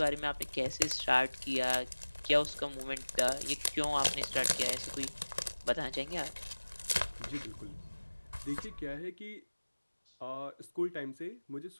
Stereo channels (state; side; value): inverted; both; correlation -1.00